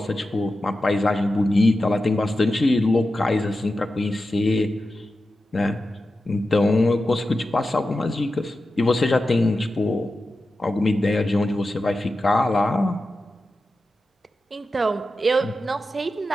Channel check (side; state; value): both; normal; correlation 0.92